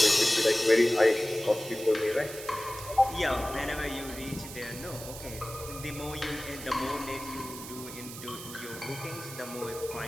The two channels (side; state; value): right; noise; hiss, 12 dB below the sound